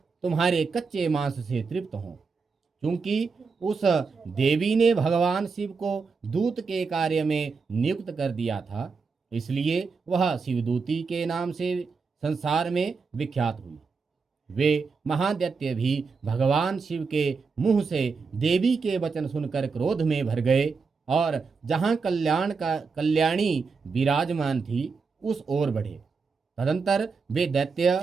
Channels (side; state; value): left; quieter; 4.9 dB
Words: तुम्हारे कच्चे मांस से तृप्त हों। क्योंकि उस देवी ने भगवान शिव को दूत के कार्य में नियुक्त कर दिया था, इसलिए वह शिवदूती के नाम से संसार में विख्यात हुई। वे महादैत्य भी भगवान शिव के मुंह से देवी के वचन सुनकर क्रोध में भर गए और जहां कल्याणी विराजमान थी उस ओर बढ़े। तदंतर वे